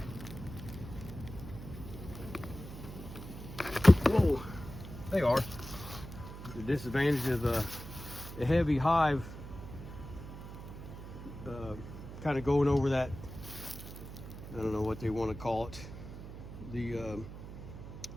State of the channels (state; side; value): noise; right; hum, 12 dB below the sound